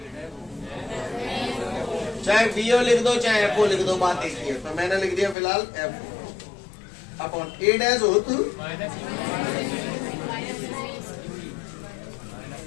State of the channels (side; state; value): right; drops out; at 5.4 s